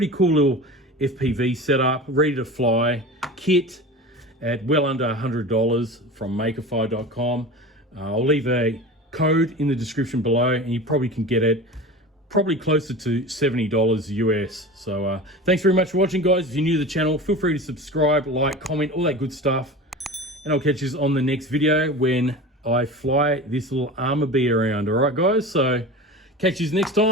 cool little FPV setup, ready to fly kit at well under $100 from Makerfire.com. I'll leave a code in the description below, and you probably can get it probably closer to $70 US. So thanks very much for watching, guys. If you're new to the channel, feel free to subscribe, like, comment, all that good stuff. And I'll catch you on the next video when I fly this little Armor Bee around. All right, guys? So catch you next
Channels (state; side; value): normal; both; correlation 0.33